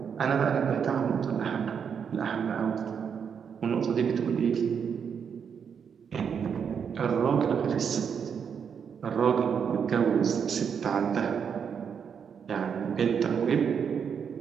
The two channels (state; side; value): quieter; left; 7.1 dB